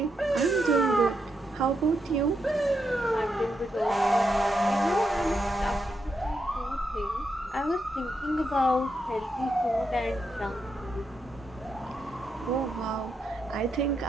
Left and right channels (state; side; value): normal; both; correlation 0.83